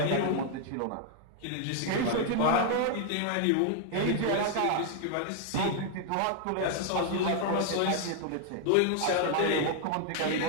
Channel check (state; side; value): different; both; correlation 0.00